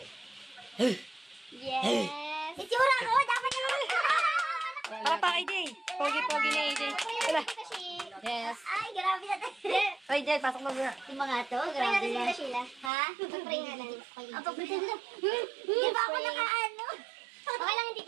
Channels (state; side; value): drops out; left; at 12.9 s